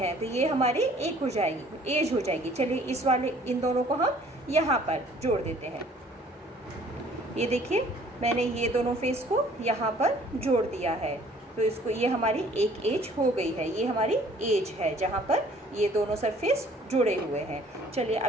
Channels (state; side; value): normal; both; correlation 0.56